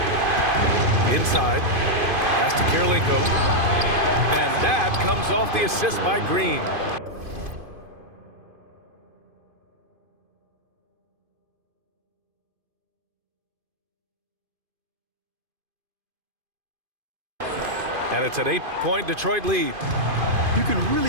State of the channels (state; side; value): late; left; 2.5 ms